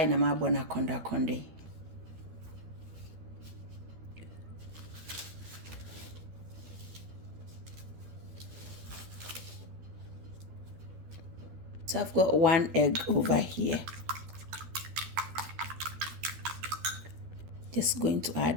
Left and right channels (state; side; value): late; left; 12 ms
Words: na mabo na konda konde. So I've got 1 egg over here. Just going to